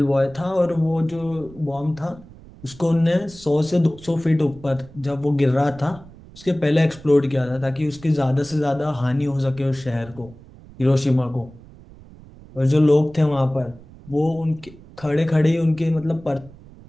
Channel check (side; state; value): right; noise; rumble, 21 dB below the sound